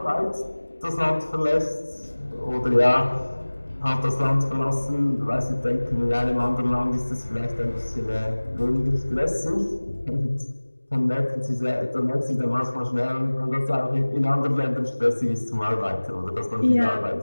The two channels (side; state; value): both; inverted; correlation -1.00